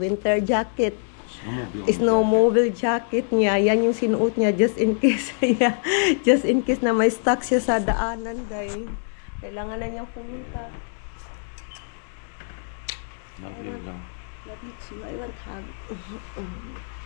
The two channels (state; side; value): silent; right; 62 dB below the other